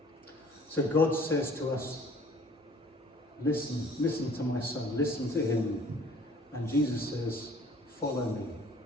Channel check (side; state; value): both; normal; correlation 0.53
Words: So God says to us, listen to my son, listen to him. And Jesus says, follow me.